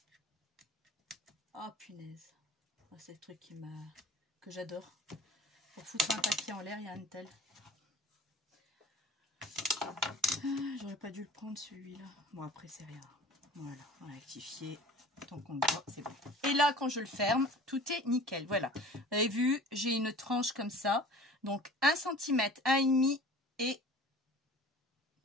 Ah, punaise. Ah, c'est le truc que j'adore. Pour foutre un papier en l'air, il y a un tel. Ah, j'aurais pas dû le prendre celui-là. Bon, après, c'est rien. Voilà, on a rectifié. Tant qu'on le voit, c'est bon. Et là, quand je le ferme, tout est nickel. Voilà. Vous avez vu, j'ai une tranche comme ça. Donc, 1 cm, 1,5 et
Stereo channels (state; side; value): normal; both; correlation 0.43